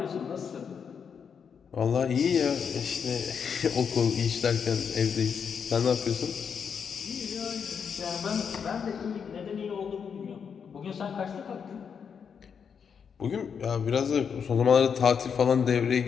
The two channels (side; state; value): right; quieter; 6.8 dB